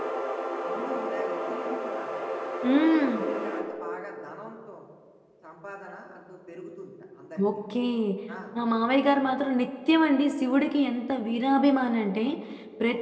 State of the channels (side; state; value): both; identical; correlation 1.00